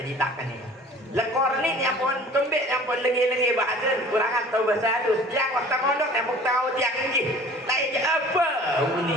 ni. Lekor ni yang pun kembik yang pun lengi-lengi bahasa kurangan tahu bahasa halus. Yang waktu mondok yang pun tahu tiang ni. Lain je apa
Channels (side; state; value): both; normal; correlation 0.47